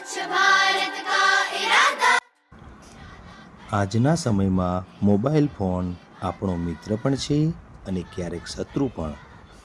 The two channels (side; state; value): both; identical; correlation 1.00